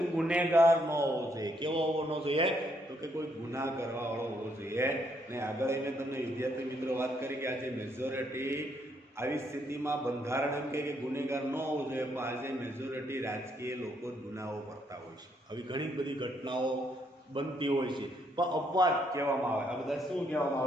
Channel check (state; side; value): normal; both; correlation 0.73